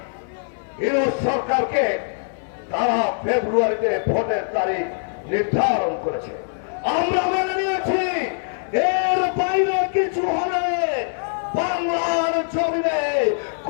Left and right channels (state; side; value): silent; right; 57 dB below the other